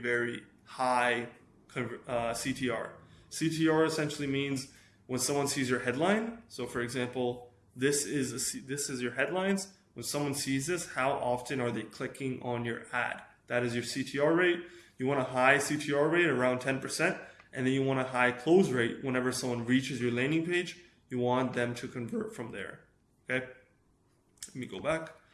high CTR. CTR essentially means when someone sees your headline. So for example, this is your headlines. When someone sees this, how often are they clicking on your ad? That is your CTR rate. You want a high CTR rate around 10%, and then you want a high close rate whenever someone reaches your landing page. You want them to convert from there. Okay? Let me go back.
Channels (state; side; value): identical; both; correlation 1.00